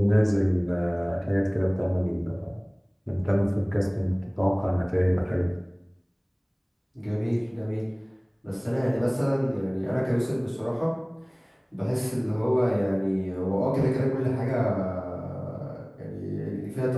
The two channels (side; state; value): both; identical; correlation 1.00